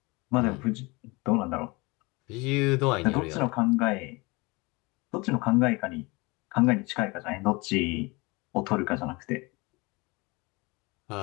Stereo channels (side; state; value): right; quieter; 25.5 dB